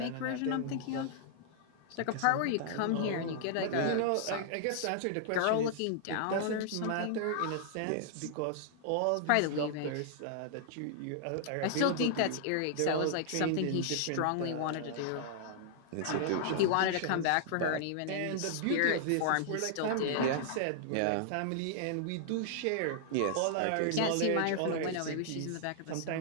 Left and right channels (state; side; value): different; both; correlation -0.01